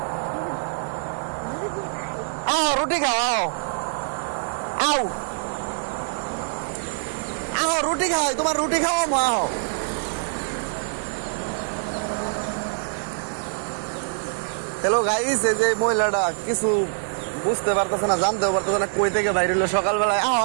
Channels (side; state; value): left; silent; digital silence